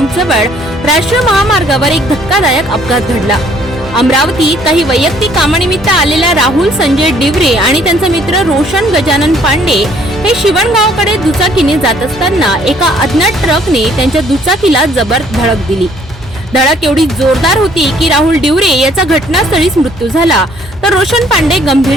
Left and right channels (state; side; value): normal; both; correlation 0.61